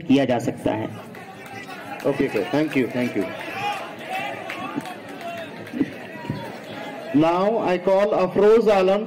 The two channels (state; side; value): identical; both; correlation 1.00